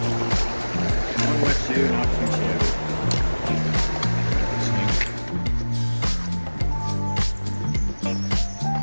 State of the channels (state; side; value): inverted; both; correlation -1.00